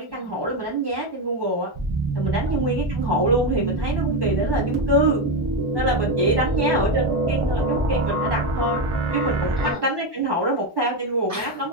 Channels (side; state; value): both; normal; correlation 0.10